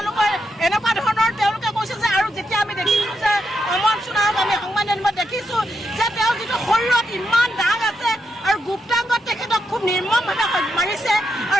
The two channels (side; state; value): both; normal; correlation 0.83